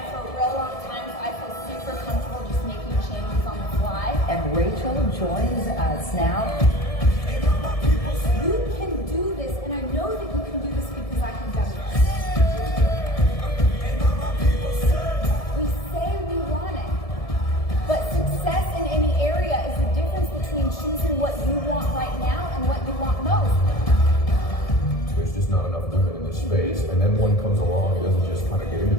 for a real long time, so I feel super comfortable just making changes on the fly. And Rachel joins us now. You can do this, and I know that you can do this because I have done this. We say we want it, but success in any area is the difference between choosing what you want right now and what you want most. There's just not enough women in this space, and then one comes along and doesn't just kind of get into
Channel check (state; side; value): late; right; 1.7 ms